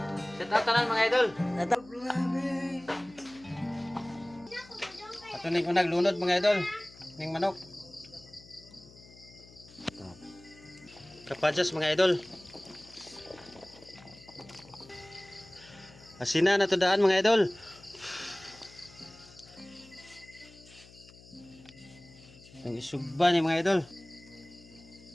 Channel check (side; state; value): left; noise; hum, 22 dB below the sound